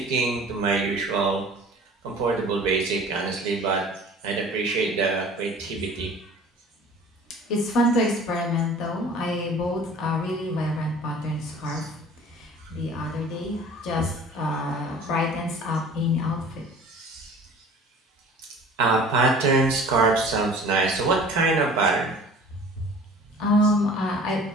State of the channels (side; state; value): both; normal; correlation 0.45